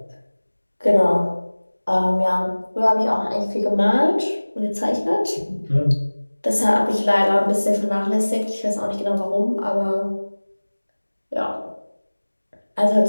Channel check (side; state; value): both; inverted; correlation -1.00